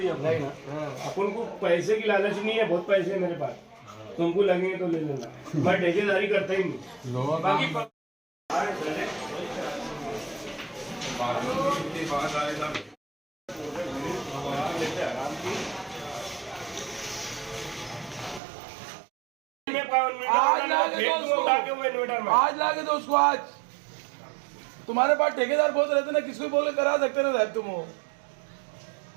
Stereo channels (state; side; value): drops out; left; at 18.4 s